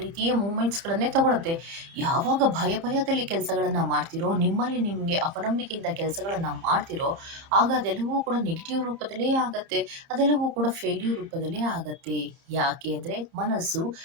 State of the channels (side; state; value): left; late; 30 ms